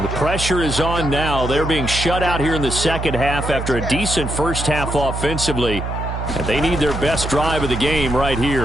The pressure is on now. They're being shut out here in the second half after a decent first half offensively. And they need their best drive of the game right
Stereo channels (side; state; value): right; noise; hum, 5 dB below the sound